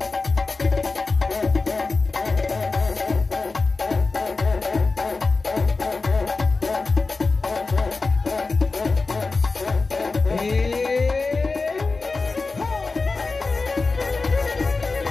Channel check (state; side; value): quieter; right; 3.9 dB